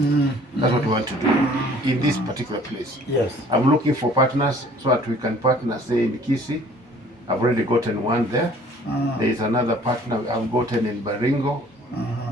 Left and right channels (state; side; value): normal; both; correlation 0.53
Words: That's what we want to do in this particular place. Yes. I'm looking for partners so that we can partner, say in Kisi. I've already gotten one there. There is another partner I've gotten in Baringo